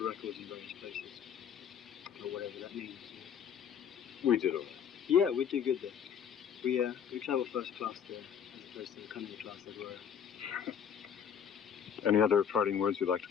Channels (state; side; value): quieter; right; 8.0 dB